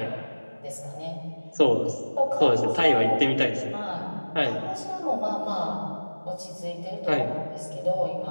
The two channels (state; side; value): inverted; both; correlation -1.00